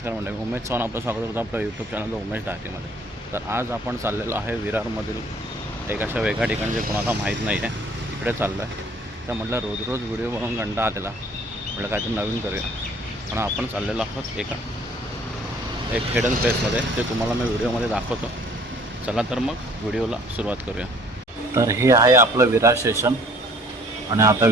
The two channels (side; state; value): both; normal; correlation 0.55